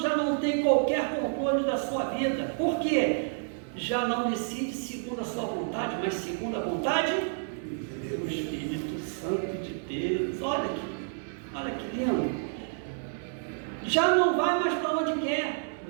não tem qualquer controle da sua vida. Por quê? já não decide segundo a sua vontade, mas segundo a vontade do Espírito Santo de Deus. Olha que lindo. Já não vai mais para onde quer,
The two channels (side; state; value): left; silent; 58 dB below the other